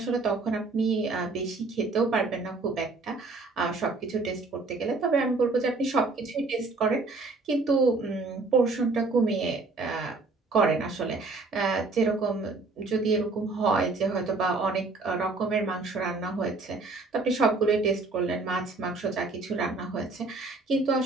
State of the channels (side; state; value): left; quieter; 3.6 dB